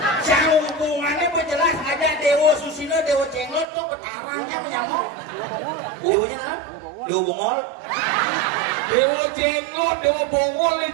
jauh hubungannya berjelas ada Dewa Susino, Dewa Cenglot tuh bertarangnya menyamuk. Dewanya mana? Dewa Bongol. Dewa Cenglot, Dewa Bongol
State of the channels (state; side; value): drops out; left; at 3.7 s